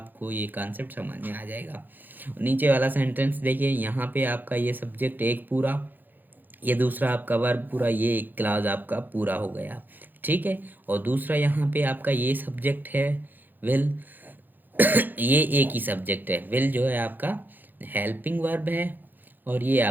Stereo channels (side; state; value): left; late; 0.088 ms